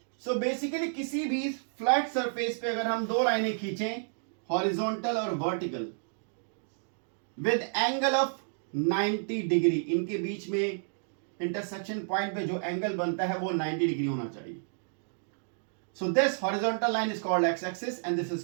सो बेसिकली किसी भी फ्लैट सरफेस पे अगर हम दो लाइनें खींचें, हॉरिजॉन्टल और vertical, with angle of 90 degree, इनके बीच में इंटरसेक्शन पॉइंट पे जो एंगल बनता है वो 90 डिग्री होना चाहिए। So this horizontal line is called X axis and this is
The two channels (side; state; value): left; silent; digital silence